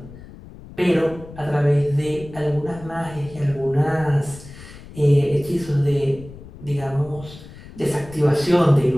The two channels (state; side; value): noise; left; rumble, 17 dB below the sound